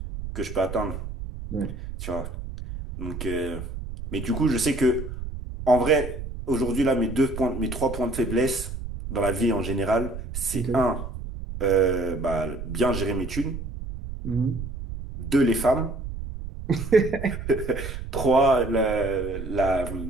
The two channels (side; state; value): right; noise; rumble, 8 dB below the sound